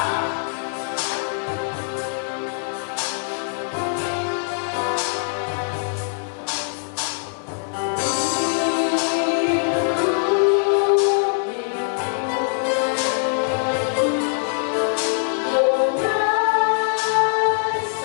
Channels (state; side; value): silent; right; 64 dB below the other